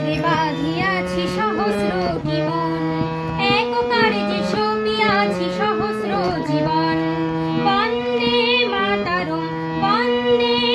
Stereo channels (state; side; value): identical; both; correlation 1.00